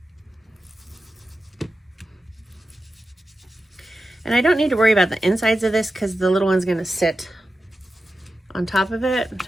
And I don't need to worry about the insides of this because the little one's going to sit on top of it.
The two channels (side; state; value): both; normal; correlation 0.92